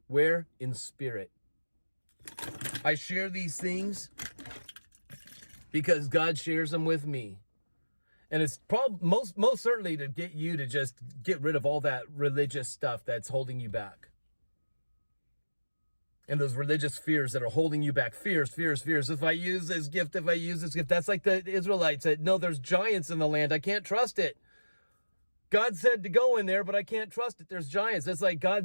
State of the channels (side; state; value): both; inverted; correlation -1.00